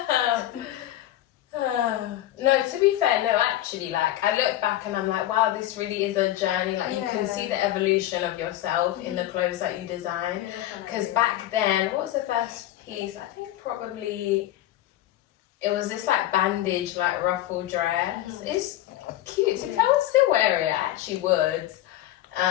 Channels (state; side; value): quieter; right; 14.0 dB